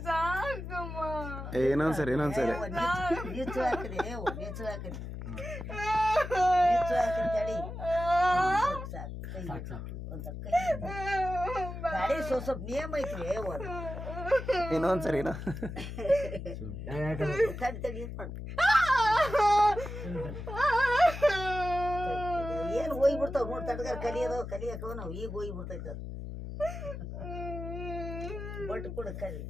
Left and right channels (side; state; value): left; noise; hum, 8 dB below the sound